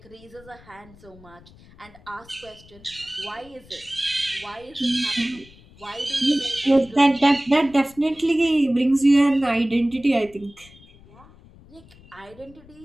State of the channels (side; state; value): left; noise; rumble, 24 dB below the sound